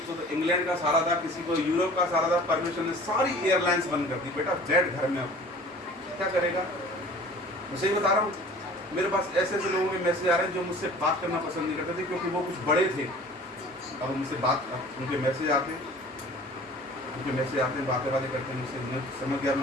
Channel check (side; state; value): both; normal; correlation 0.46